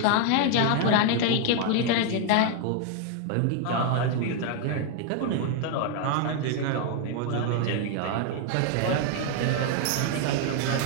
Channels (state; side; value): different; both; correlation 0.00